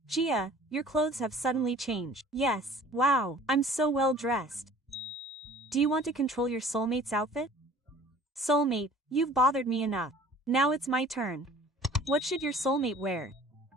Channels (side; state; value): both; normal; correlation 0.49